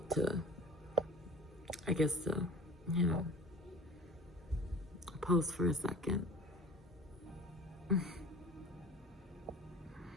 you know, pause for a second.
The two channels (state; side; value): normal; both; correlation 0.42